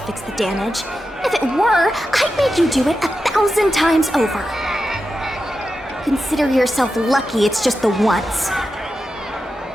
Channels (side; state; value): both; normal; correlation 0.90